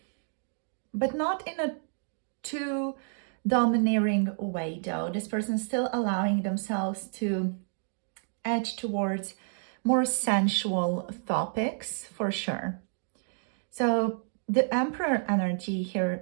But not in a too domineering way though. This person is still allowing themselves to edge towards more sensual topics for sure. So the Emperor energy here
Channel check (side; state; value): left; silent; digital silence